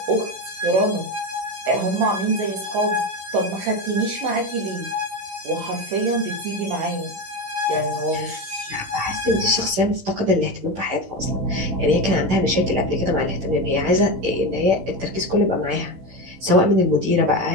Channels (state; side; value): late; left; 16 ms